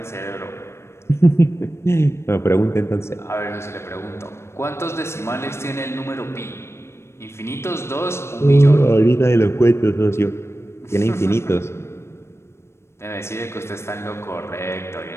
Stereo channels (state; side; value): late; right; 0.13 ms